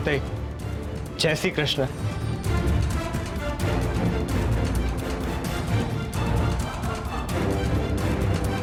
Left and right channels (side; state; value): both; identical; correlation 1.00